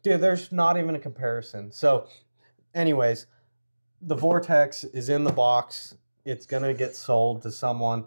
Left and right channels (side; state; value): both; inverted; correlation -1.00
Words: dude, there's not even a comparison. So anyways, the Vortex is in the box. It's going to get sold to someone.